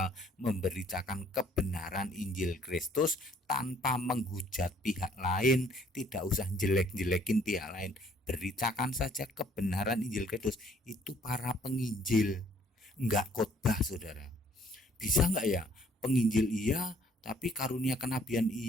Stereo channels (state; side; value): normal; both; correlation 0.61